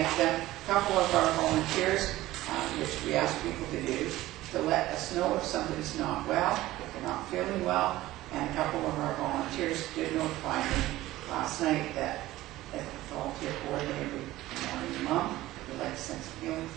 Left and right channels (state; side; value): quieter; left; 16.5 dB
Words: them. A couple of our volunteers, which we ask people to do, to let us know if somebody's not well, if they're not feeling well. And a couple of our volunteers did notify me last night that if the volunteer coordinator would morning mom, we'd like to send some healing